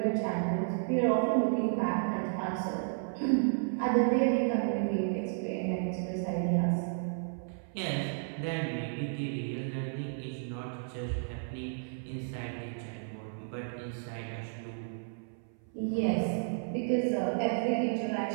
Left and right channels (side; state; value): left; silent; 56 dB below the other